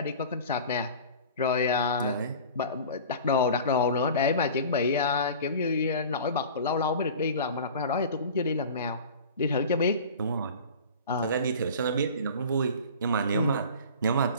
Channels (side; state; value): both; inverted; correlation -0.39